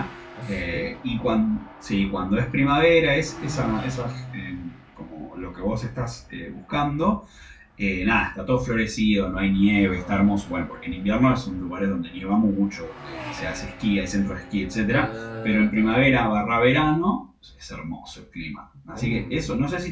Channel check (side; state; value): both; identical; correlation 1.00